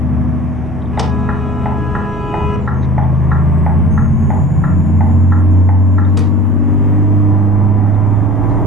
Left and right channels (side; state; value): both; normal; correlation 0.42